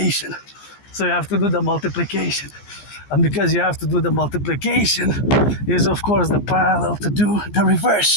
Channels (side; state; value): right; late; 15 ms